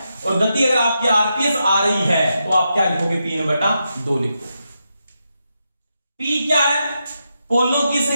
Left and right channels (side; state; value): both; inverted; correlation -0.85